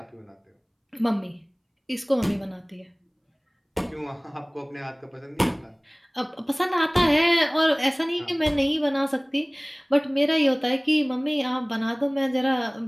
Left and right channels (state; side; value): identical; both; correlation 1.00